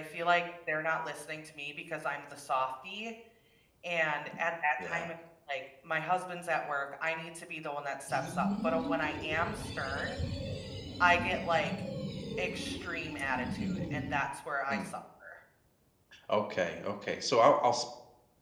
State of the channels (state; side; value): identical; both; correlation 1.00